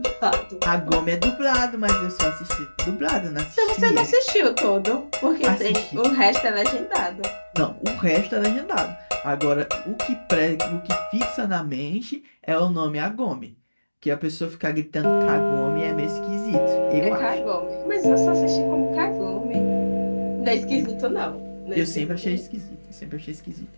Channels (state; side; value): inverted; both; correlation -1.00